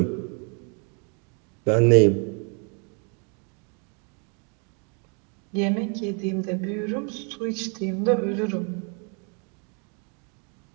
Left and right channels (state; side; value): quieter; left; 37.1 dB